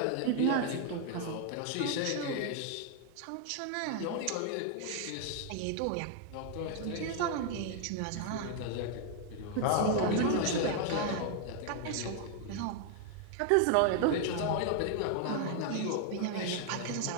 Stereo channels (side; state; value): both; different; correlation 0.00